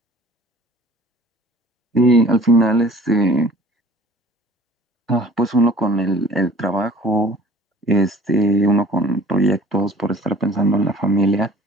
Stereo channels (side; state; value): both; normal; correlation 0.49